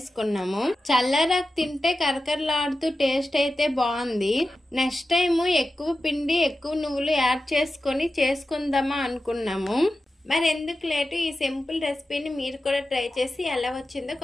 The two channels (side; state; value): both; normal; correlation 0.92